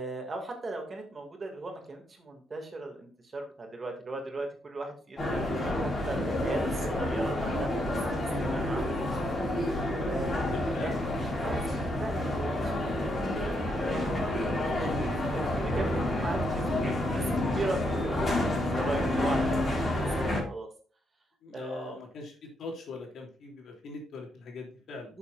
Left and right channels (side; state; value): both; normal; correlation 0.78